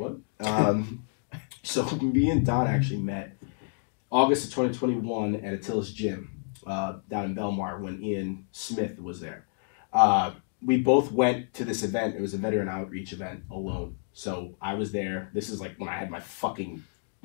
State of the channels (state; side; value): silent; right; digital silence